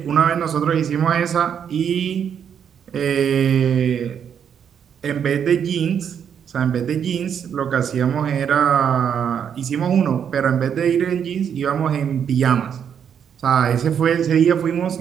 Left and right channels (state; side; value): quieter; left; 8.1 dB